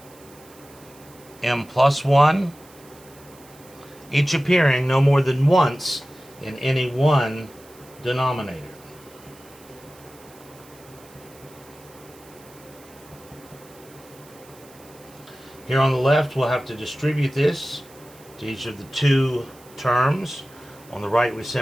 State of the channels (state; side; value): noise; right; hiss, 24 dB below the sound